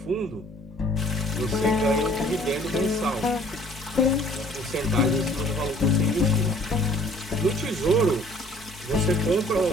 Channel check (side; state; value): both; normal; correlation 0.56